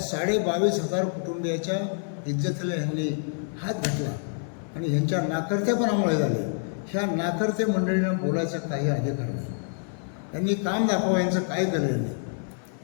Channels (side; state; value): right; silent; 60 dB below the other